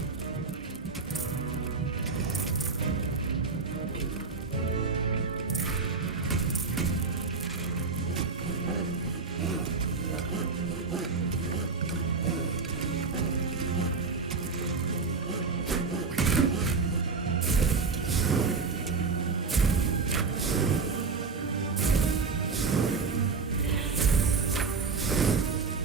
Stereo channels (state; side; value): quieter; left; 4.6 dB